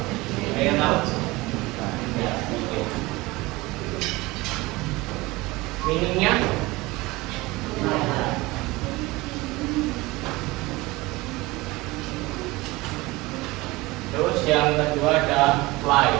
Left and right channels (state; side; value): quieter; left; 21.4 dB